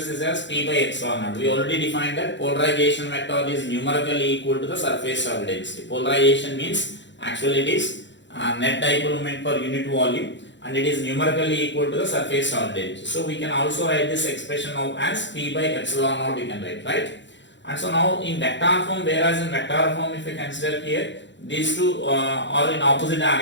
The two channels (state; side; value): late; right; 0.53 ms